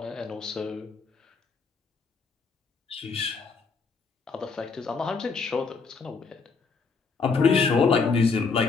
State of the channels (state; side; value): quieter; right; 4.8 dB